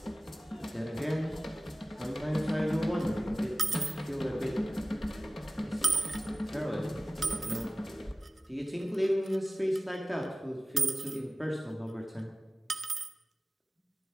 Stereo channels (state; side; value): normal; both; correlation 0.97